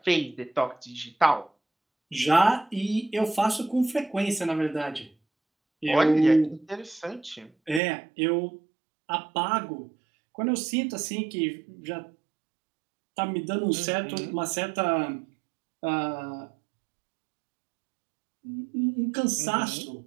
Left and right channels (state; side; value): drops out; left; at 7.8 s